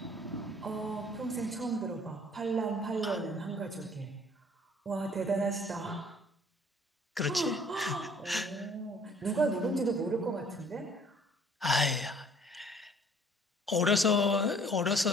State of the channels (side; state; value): both; normal; correlation 0.56